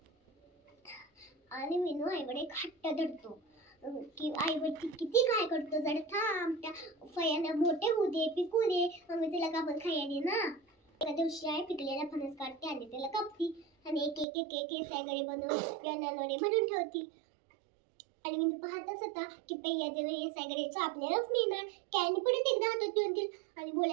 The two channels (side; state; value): left; drops out; at 14.2 s